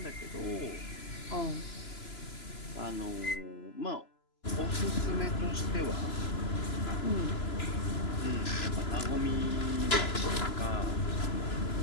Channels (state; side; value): late; right; 3.0 ms